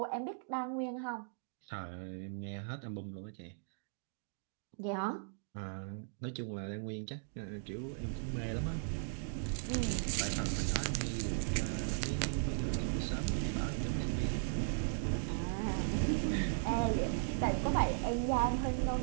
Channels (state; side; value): silent; left; digital silence